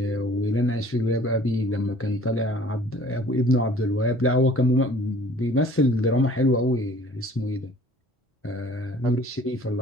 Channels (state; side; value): normal; both; correlation 0.51